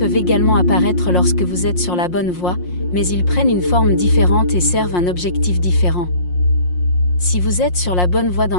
également apparaître lorsque vous êtes sur la bonne voie, mais ils prennent une forme différente et servent un objectif différent. Si vous êtes sur la bonne voie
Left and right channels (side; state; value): right; late; 5.6 ms